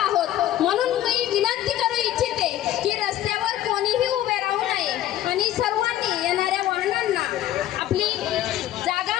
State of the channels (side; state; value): right; quieter; 12.8 dB